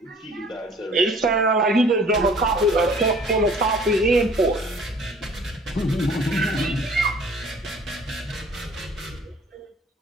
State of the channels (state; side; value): normal; both; correlation 0.52